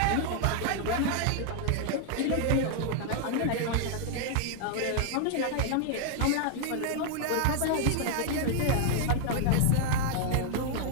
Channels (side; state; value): both; different; correlation 0.00